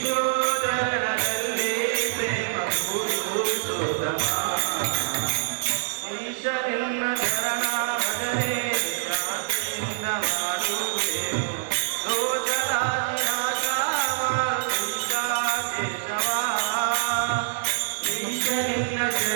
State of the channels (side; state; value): left; silent; digital silence